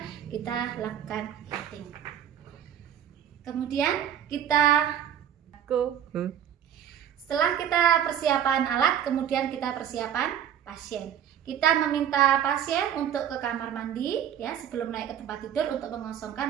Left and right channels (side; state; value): left; quieter; 9.5 dB